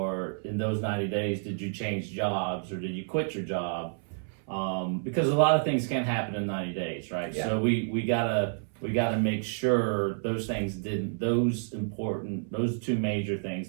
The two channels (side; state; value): left; silent; 58 dB below the other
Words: in those 90 days, did you change jobs, or did you quit your job? Because a lot of things can happen in 90 days, right? Yeah. So we gotta make sure those two major